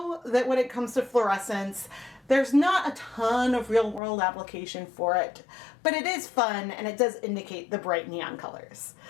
that when it comes to fluorescence, there's not a ton of real world application for it, but it is fun and it does indicate the bright neon colors.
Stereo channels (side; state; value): right; drops out; at 4.0 s